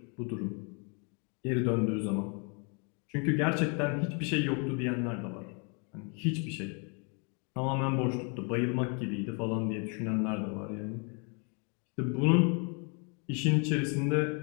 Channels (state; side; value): quieter; right; 36.6 dB